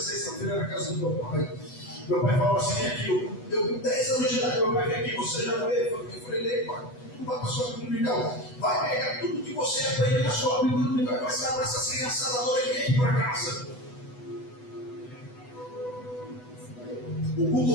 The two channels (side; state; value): right; late; 8.1 ms